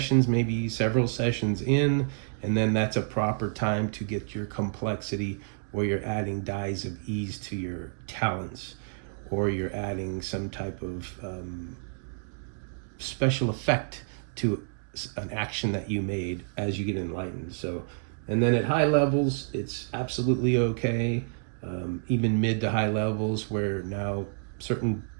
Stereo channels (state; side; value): silent; left; digital silence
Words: maybe several sessions in, and then that's a proper time to get your complexity where you're adding dies of ease to your talents, or you're adding some type of special effect to an action that you made as you get Enlightened. So, and then at high levels, it's absolutely okay, even mid to high levels, where now certain